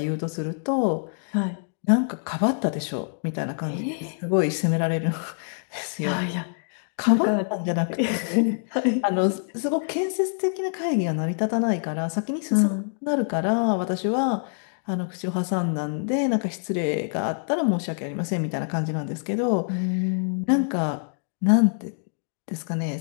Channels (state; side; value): silent; right; digital silence